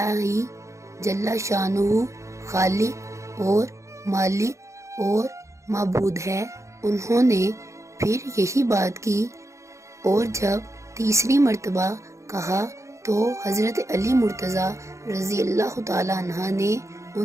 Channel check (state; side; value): late; left; 0.14 ms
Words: ہی جل شانہ خالق اور مالک اور معبود ہے۔ انہوں نے پھر یہی بات کی اور جب تیسری مرتبہ کہا تو حضرت علی مرتضیٰ رضی اللہ تعالیٰ عنہ نے